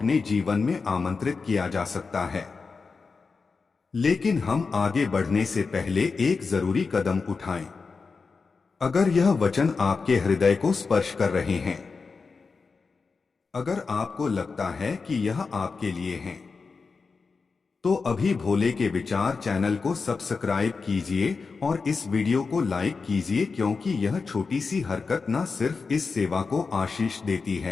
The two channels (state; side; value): quieter; right; 4.7 dB